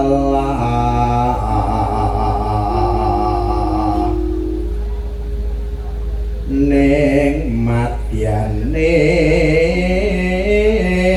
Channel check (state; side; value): identical; both; correlation 1.00